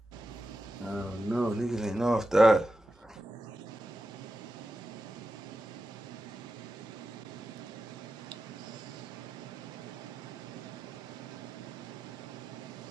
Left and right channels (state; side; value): normal; both; correlation 0.90